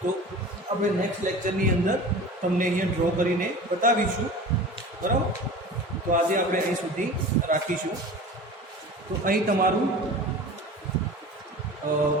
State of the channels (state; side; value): normal; both; correlation 0.37